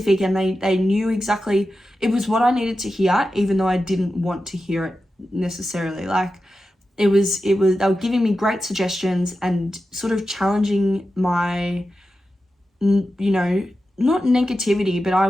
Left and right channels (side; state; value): both; normal; correlation 0.91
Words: and they knew exactly, it was what I needed to hear, even though I didn't want to hear it necessarily. Like, it was they were giving me great suggestions and sort of challenging my, you know, not negativity, but I